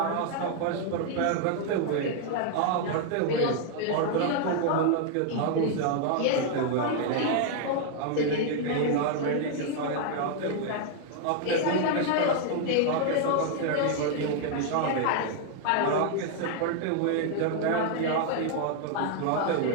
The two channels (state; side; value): different; both; correlation 0.00